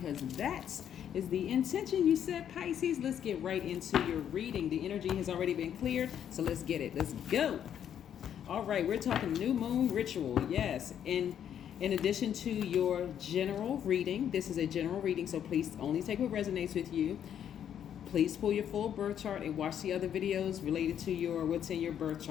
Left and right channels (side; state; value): right; quieter; 9.4 dB